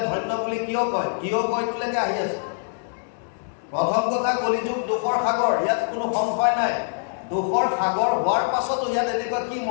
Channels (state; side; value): silent; right; digital silence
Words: ধন্য বুলি কিয় কয়লৈকে আহি আছে প্ৰথম কথা কলিযুগ দুখৰ সাগৰ ইয়াত কোনো সংশয় নাই দুখৰ সাগৰ হোৱাৰ পাছতো ইয়াত এনেকুৱা কি